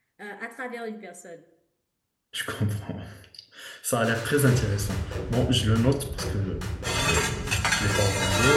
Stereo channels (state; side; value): identical; both; correlation 1.00